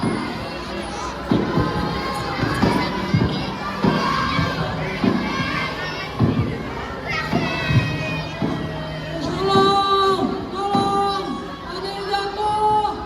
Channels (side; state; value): both; identical; correlation 1.00